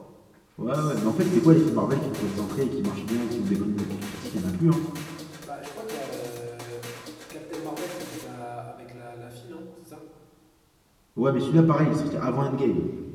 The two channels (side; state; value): both; identical; correlation 1.00